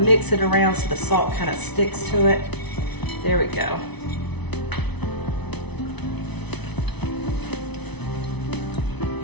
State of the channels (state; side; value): late; right; 0.99 ms